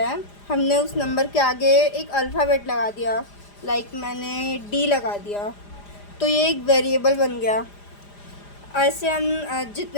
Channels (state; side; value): late; right; 4.9 ms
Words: हमने उस नंबर के आगे एक अल्फ़ाबेट लगा दिया, लाइक मैंने डी लगा दिया, तो ये एक वेरिएबल बन गया। ऐसे हम